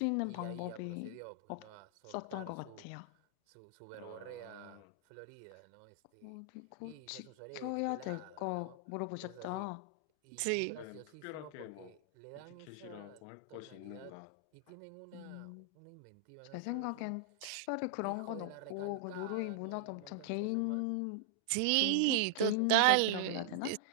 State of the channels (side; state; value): both; different; correlation -0.01